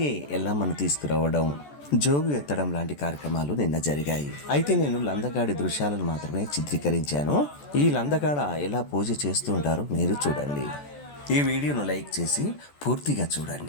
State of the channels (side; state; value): right; late; 14 ms